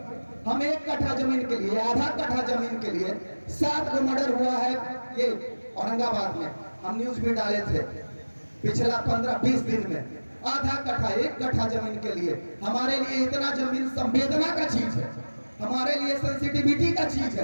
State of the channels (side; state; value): both; inverted; correlation -1.00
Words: हम 1 कट्ठा जमीन के लिए, आधा कट्ठा जमीन के लिए 7 को मर्डर हुआ है ये औरंगाबाद में। हम न्यूज भी डाले थे पिछला 15-20 दिन में। आधा कट्ठा, 1 कट्ठा जमीन के लिए। हमारे लिए इतना जमीन संवेदना का चीज है, हमारे लिए सेंसिटिविटी का चीज